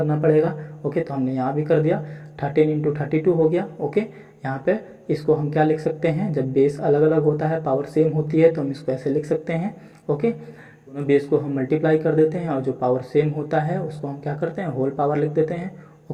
पड़ेगा। ओके, तो हमने यहाँ भी कर दिया, 13 इंटू 32 हो गया। ओके, यहाँ पे इसको हम क्या लिख सकते हैं? जब बेस अलग अलग होता है, पावर सेम होती है, तो हम इसको ऐसे लिख सकते हैं। ओके, दोनों बेस को हम मल्टीप्लाई कर देते हैं, और जो पावर सेम होता है उसको हम क्या करते हैं? होल पावर लिख देते हैं।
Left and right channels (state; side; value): identical; both; correlation 1.00